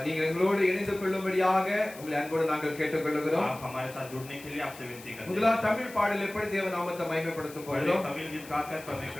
நீங்கள் எங்களோடு இணைந்து கொள்ளும்படியாக உங்களை அன்போடு நாங்கள் கேட்டுக்கொள்கிறோம். आप हमारे साथ जुड़ने के लिए आपसे विनती करते हैं। முதலாவது தமிழ் பாடலை எப்படி தேவ நாமத்தை மகிமைப்படுத்தும் पहले போகிறோம். तमिल गीत गाकर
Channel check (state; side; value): noise; left; hiss, 18 dB below the sound